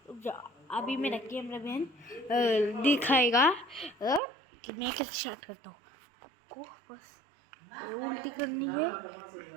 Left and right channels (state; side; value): drops out; left; at 4.2 s